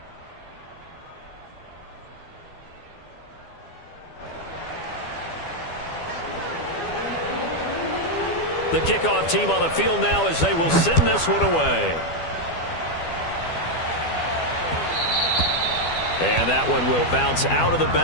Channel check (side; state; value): right; late; 12 ms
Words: The kickoff team on the field now as they will send this one away. And that one will bounce out of the